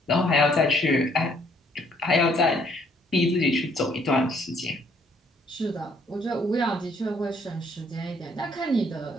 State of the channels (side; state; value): both; normal; correlation 0.65